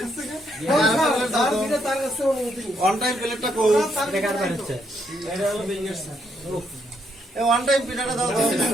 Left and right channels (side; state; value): both; normal; correlation 0.75